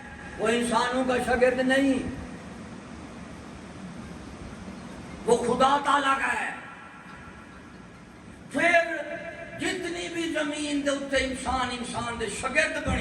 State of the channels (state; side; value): identical; both; correlation 1.00